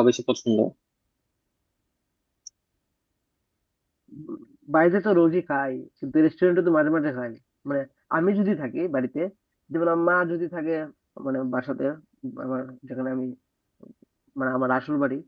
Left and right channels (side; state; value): both; identical; correlation 1.00